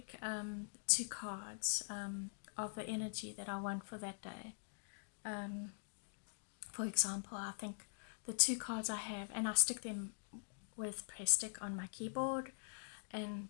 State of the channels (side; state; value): right; silent; digital silence